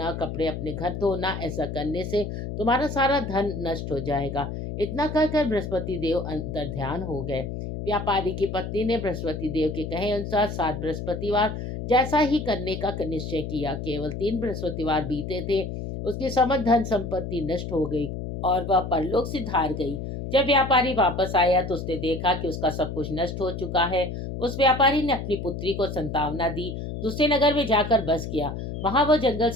कपड़े अपने घर धोना। ऐसा करने से तुम्हारा सारा धन नष्ट हो जाएगा। इतना कहकर बृहस्पति देव अंतर ध्यान हो गए। व्यापारी की पत्नी ने बृहस्पति देव के कहे अनुसार 7 बृहस्पतिवार जैसा ही करने का निश्चय किया। केवल 3 बृहस्पतिवार बीते थे, उसकी समस्त धन संपत्ति नष्ट हो गई और वह परलोक से धार गई। जब व्यापारी वापस आया तो उसने देखा कि उसका सब कुछ नष्ट हो चुका है। उस व्यापारी ने अपनी पुत्री को संतावना दी, दूसरे नगर में जाकर बस गया। वहां वह जंगल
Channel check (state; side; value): noise; left; hum, 6 dB below the sound